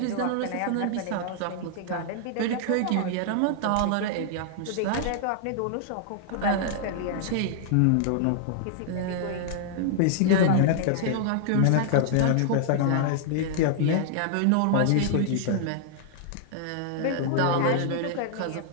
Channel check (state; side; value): different; both; correlation -0.01